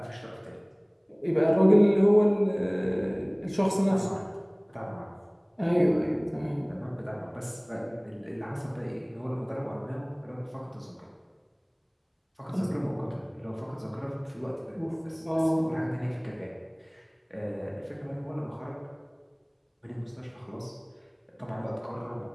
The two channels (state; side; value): identical; both; correlation 1.00